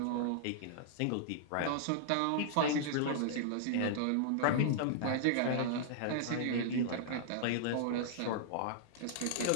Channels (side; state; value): both; different; correlation -0.01